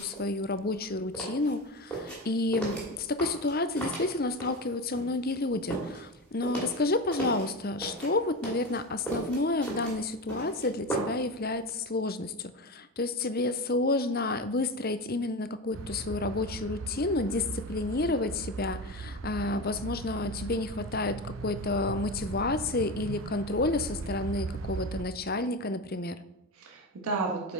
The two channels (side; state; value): both; normal; correlation 0.23